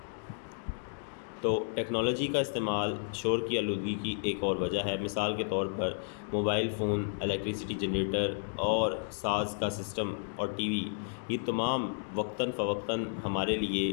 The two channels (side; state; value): right; silent; digital silence